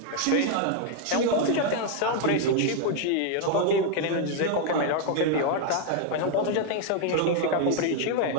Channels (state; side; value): different; both; correlation 0.01